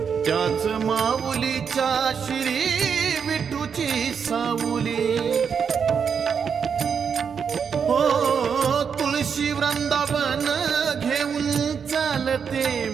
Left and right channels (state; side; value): quieter; left; 6.7 dB